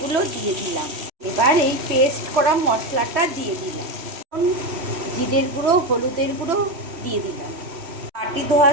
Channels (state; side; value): late; left; 3.1 ms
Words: দিয়ে দিলাম। এবার এই পেস্ট করা মশলাটা দিয়ে দিলাম, জিরের গুঁড়ো, হলুদের গুঁড়ো দিয়ে দিলাম, বাটি ধোয়া